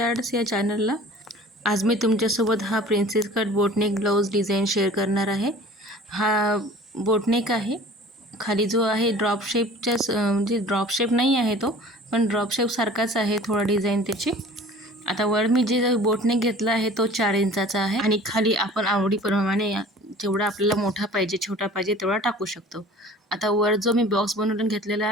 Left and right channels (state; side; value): normal; both; correlation 0.45